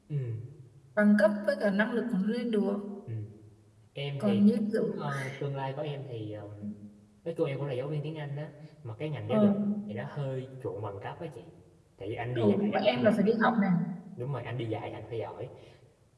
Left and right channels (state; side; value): identical; both; correlation 1.00